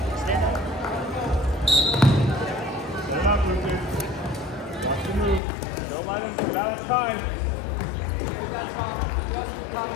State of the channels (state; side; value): drops out; right; at 5.4 s